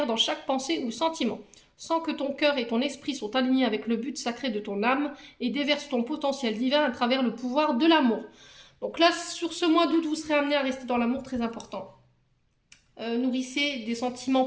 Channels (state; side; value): identical; both; correlation 1.00